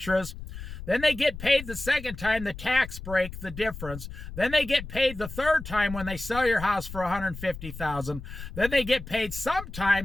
Then they get paid the second time, the tax break, the difference. Then they get paid the third time when they sell your house for $150,000. Then they get paid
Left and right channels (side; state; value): left; noise; rumble, 11 dB below the sound